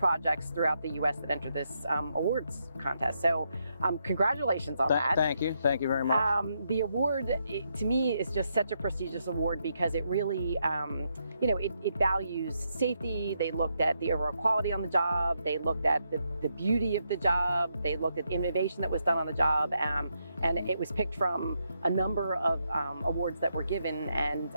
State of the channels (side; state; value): both; inverted; correlation -0.80